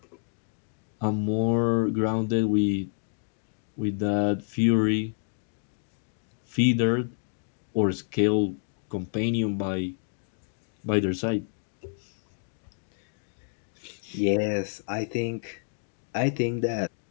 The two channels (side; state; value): right; silent; digital silence